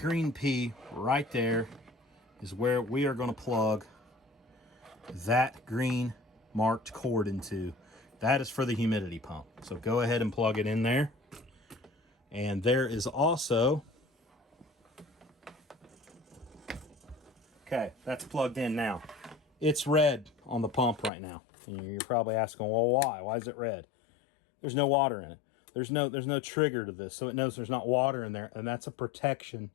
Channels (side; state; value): right; drops out; at 21.1 s